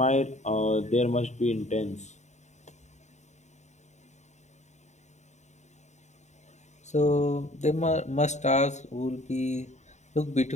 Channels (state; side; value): late; right; 0.34 ms